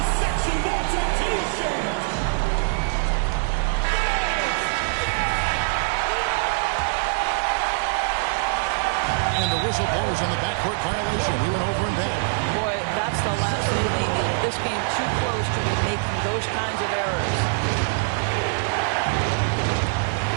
section Malta t-shirt. And the whistle blows on the backcourt violation. He went over and back. Boy, that's the last thing they needed. This game too close to be making those kinds of errors.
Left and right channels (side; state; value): left; silent; digital silence